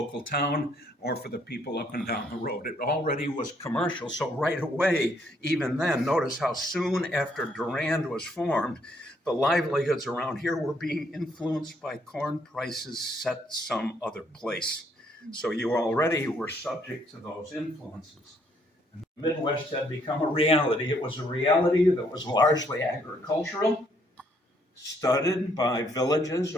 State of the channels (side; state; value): both; normal; correlation 0.69